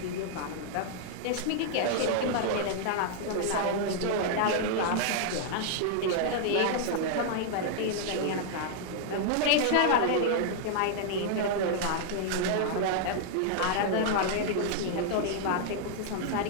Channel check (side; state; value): both; different; correlation -0.01